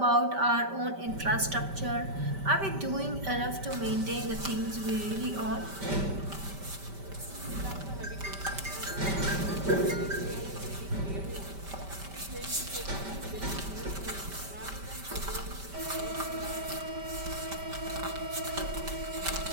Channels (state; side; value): late; left; 5.1 ms